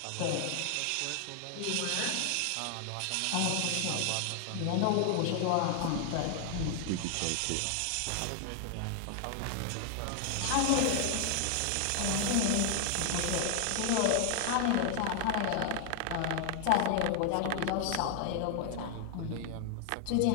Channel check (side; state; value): both; different; correlation 0.00